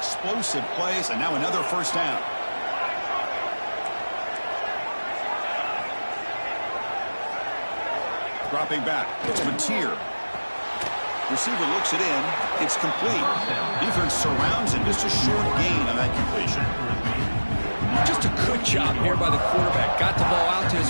plays, and now another first down. Dropping back. It's Matier. Receiver looks it in. It's complete. Defense surrounds him. Just a short gain on that completion. Just a good job here by the quarterback. Got the ball out to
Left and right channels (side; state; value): both; inverted; correlation -1.00